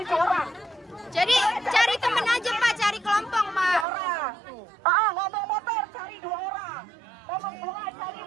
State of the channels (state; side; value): drops out; left; at 3.9 s